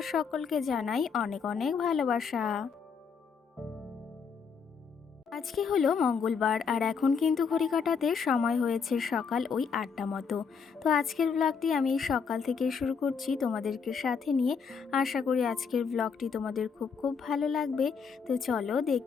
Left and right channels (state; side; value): quieter; right; 5.9 dB